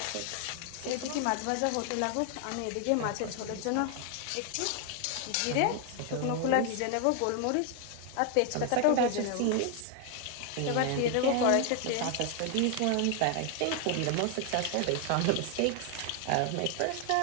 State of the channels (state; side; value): different; both; correlation 0.00